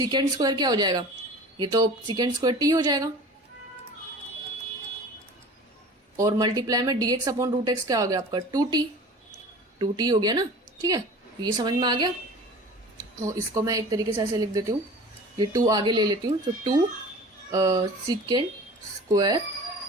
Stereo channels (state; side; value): normal; both; correlation 0.40